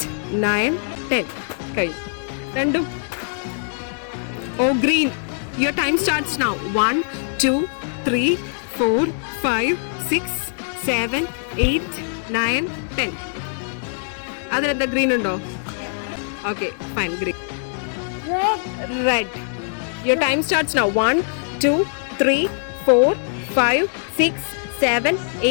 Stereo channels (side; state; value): right; silent; digital silence